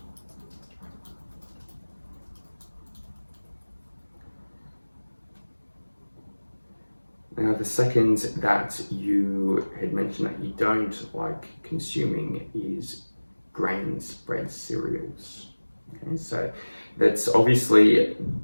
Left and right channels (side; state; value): both; inverted; correlation -1.00